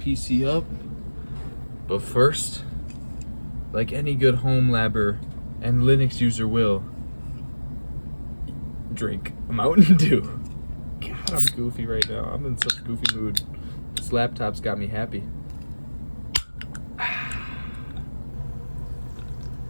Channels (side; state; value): both; inverted; correlation -1.00